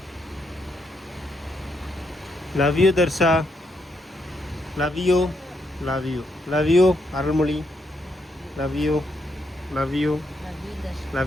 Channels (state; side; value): normal; both; correlation 0.78